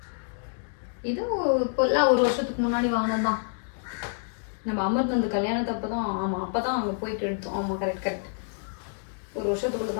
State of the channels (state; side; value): silent; right; digital silence